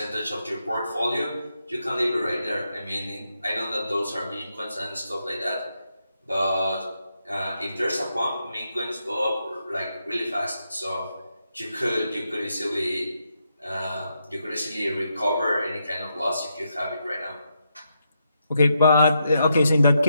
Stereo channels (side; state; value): both; inverted; correlation -0.82